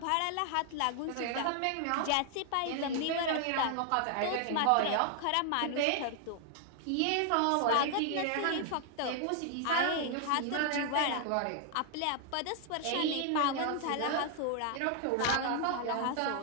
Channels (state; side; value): different; both; correlation 0.00